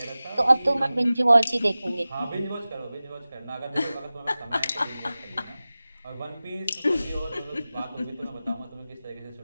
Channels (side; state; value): both; inverted; correlation -0.96